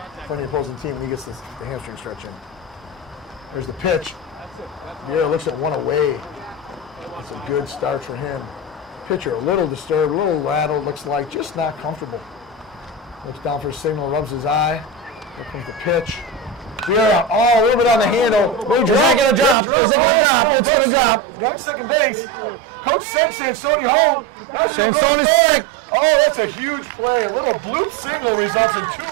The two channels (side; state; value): left; drops out; at 19.6 s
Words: for any opposing team when he gets the hamstring stretch in. There's the pitch. Vieira looks at one away. That's a good start for him. Pitcher a little disturbed, a little rattled, looks like just not comfortable. Looks down for a signal, rubs his eye. Here comes the pitch. Vieira, oh, a little bit on the handle. Little drop, gonna drop. drills. Oh, it's a little ditch now. Runs second base. Coach sends Sansoni home. Now she'll go to third. Oh, that's a huge play. A little bloop signal results in